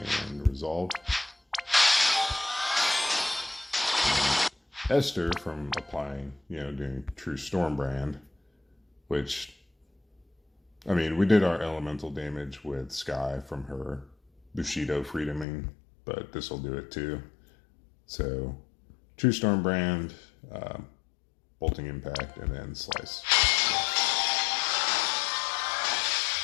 and Resolve. Esther from applying, doing True Stormbrand, which, I mean, we did our elemental damage with Skye from her Bushido Freedoming, but this will do it too. So, True Stormbrand, Bolting Impact, and then Slice.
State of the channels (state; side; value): drops out; right; at 15.5 s